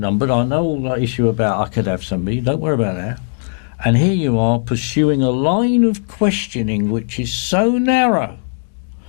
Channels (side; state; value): right; silent; digital silence